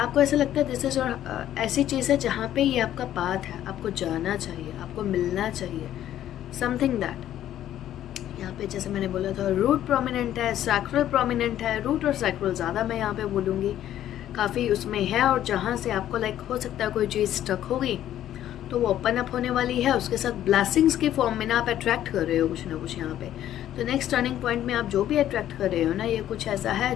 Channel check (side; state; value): right; quieter; 11.9 dB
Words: ऐसा लगता है दिस इज़, और ऐसी चीज़ है जहाँ पे ये आपका पाथ है, आपको जाना चाहिए, आपको मिलना चाहिए, समथिंग दैट। यहाँ पे जैसे मैंने बोला था रूट प्रोमिनेंट है, सैक्रल प्रोमिनेंट है, रूट और सैक्रल ज़्यादा मैं यहाँ पे बोलूँगी, काफ़ी उसमें है। और जहाँ से आपको लाइक हो सकता है कोई चीज़ स्टक होगी तो वो ओपन अप होने वाली है, उसके साथ ब्लेसिंग्स के फॉर्म में ना आप अट्रैक्ट कर रहे हो कुछ ना कुछ यहाँ पे। तो नेक्स्ट टर्निंग पॉइंट में आप जो भी अट्रैक्ट कर रहे हो ना, ये कुछ ऐसा है